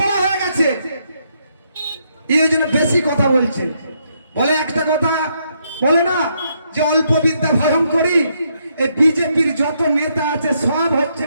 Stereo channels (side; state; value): both; inverted; correlation -0.76